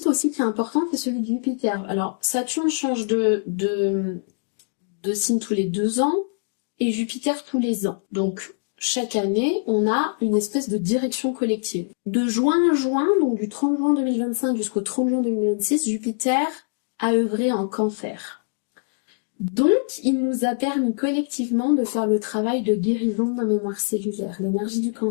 aussi qui est important, c'est celui de Jupiter. Alors, Saturne change de signe tous les 2 ans et Jupiter tous les ans. Donc, chaque année, on a une espèce de direction collective. De juin à juin, donc du 30 juin 2025 jusqu'au 30 juin 2026, Jupiter a œuvré en Cancer. Donc, il nous a permis collectivement de faire le travail de guérison de la mémoire cellulaire. L'énergie du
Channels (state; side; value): silent; right; digital silence